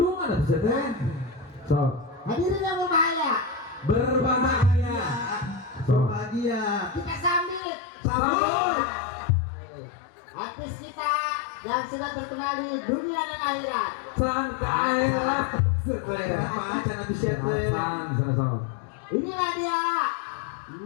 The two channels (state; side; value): drops out; right; at 7.6 s